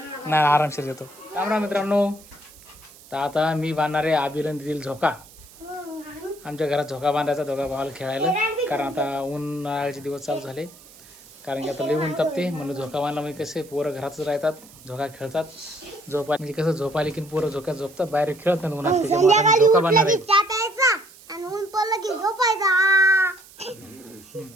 नाही, आरामशीर देतो. राम राम मित्रांनो. तर आता मी बांधणार आहे अभिरन देतील झोका. आमच्या घरात झोका बांधायचा दोघा भावाला खेळायला, कारण आता उन्हाळ्याचे दिवस चालू झाले. कारण की आता लई ऊन तापते, म्हणून झोका बांधला. म्हणजे कसे पोरं घरातच राहतात, झोका खेळतात. झोपा म्हणजे कसं झोपायला की पोरं झोक्यात झोपतात, बाहेर खेळतात उन्हात. त्याच्यामुळे आता झोका बांधणार आहे.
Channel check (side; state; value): right; noise; hiss, 22 dB below the sound